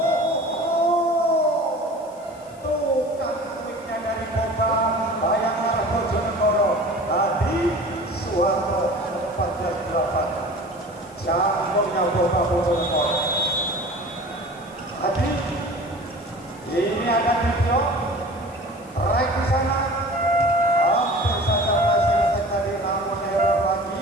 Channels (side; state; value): left; noise; hiss, 26 dB below the sound